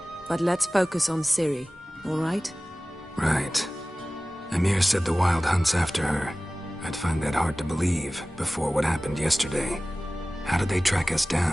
But let's focus on Ciri, all right? Right. Emir said the Wild Hunt's after her. I'd find that hard to believe before what happened yesterday. How did they track us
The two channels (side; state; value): both; normal; correlation 0.97